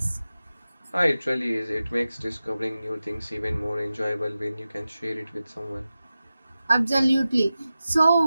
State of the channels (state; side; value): inverted; both; correlation -0.94